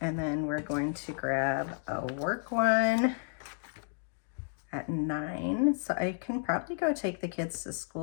And then we're going to grab a work one at 9. So I can probably go take the kids to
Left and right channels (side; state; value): right; silent; 56 dB below the other